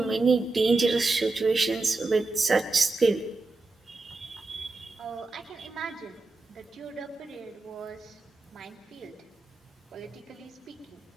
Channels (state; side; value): quieter; left; 3.4 dB